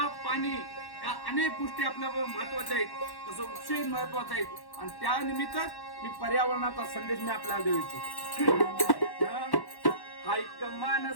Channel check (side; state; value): right; late; 1.1 ms